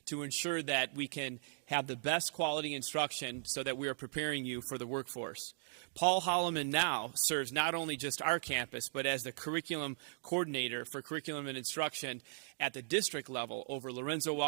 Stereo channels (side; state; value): left; silent; digital silence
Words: to ensure that we can have the best quality instruction so that we are preparing you for the workforce. Paul Holloman now serves not only just our campus, but as the curriculum coordinator for curriculum and instruction at the district level over Lorenzo